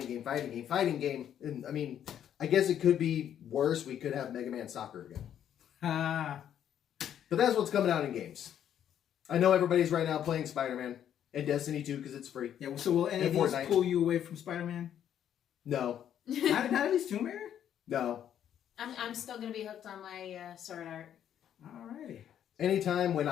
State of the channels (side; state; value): right; quieter; 9.9 dB